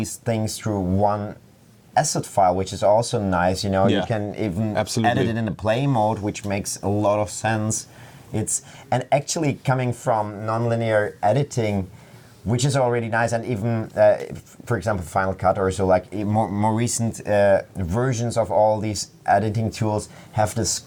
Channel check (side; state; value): both; identical; correlation 1.00